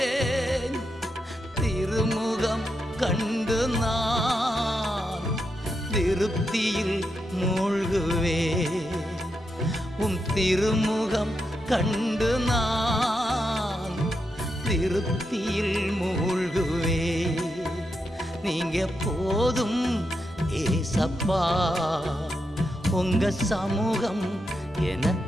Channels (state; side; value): normal; both; correlation 0.85